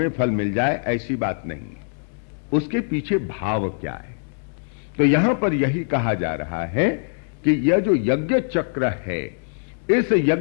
फल मिल जाए ऐसी बात नहीं है, उसके पीछे भाव क्या है। तो यहां पर यही कहा जा रहा है कि यह जो यज्ञ चक्र है, इस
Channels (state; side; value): silent; right; digital silence